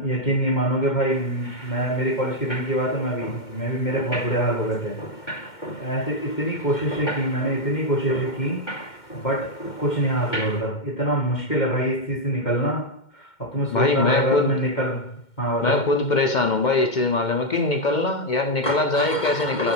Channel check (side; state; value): right; late; 2.1 ms